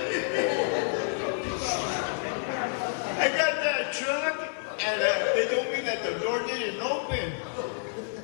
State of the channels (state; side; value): silent; right; 59 dB below the other